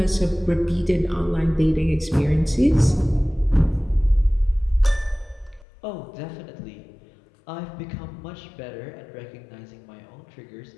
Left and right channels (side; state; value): right; drops out; at 5.7 s